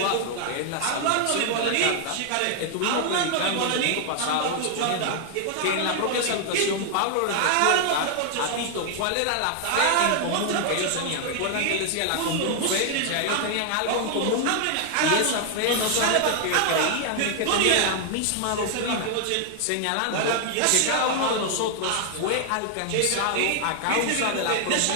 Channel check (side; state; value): both; different; correlation 0.00